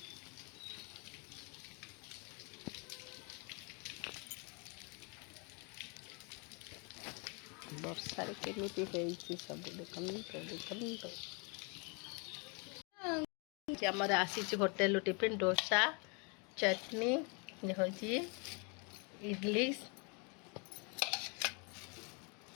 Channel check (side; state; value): right; quieter; 33.5 dB